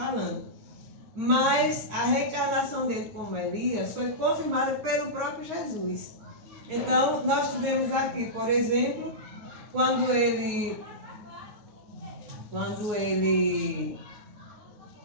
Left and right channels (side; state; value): left; late; 9.6 ms